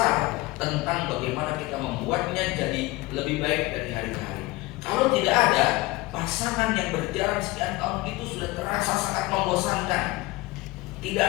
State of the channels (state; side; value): quieter; right; 20.9 dB